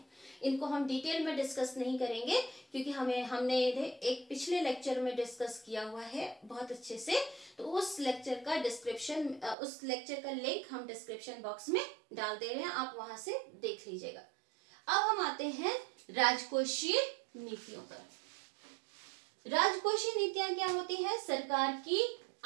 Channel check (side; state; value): left; drops out; at 9.6 s